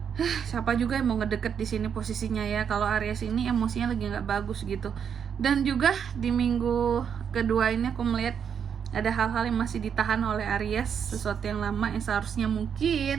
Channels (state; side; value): quieter; left; 7.6 dB